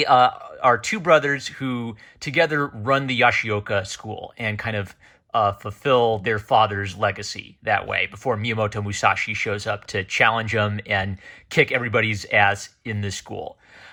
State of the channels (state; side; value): identical; both; correlation 1.00